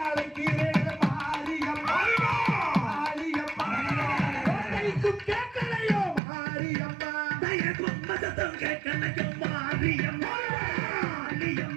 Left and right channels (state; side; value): drops out; left; at 6.2 s